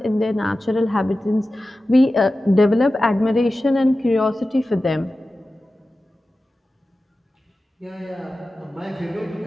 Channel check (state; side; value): normal; both; correlation 0.95